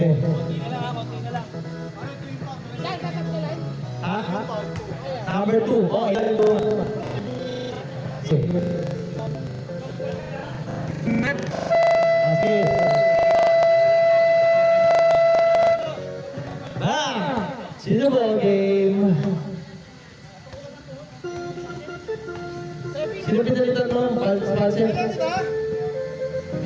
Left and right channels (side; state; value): both; identical; correlation 1.00